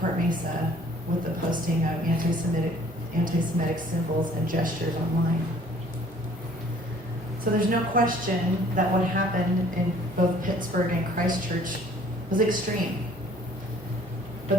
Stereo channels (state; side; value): normal; both; correlation 0.55